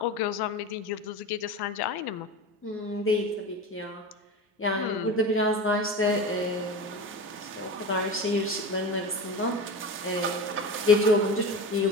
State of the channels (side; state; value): both; normal; correlation 0.28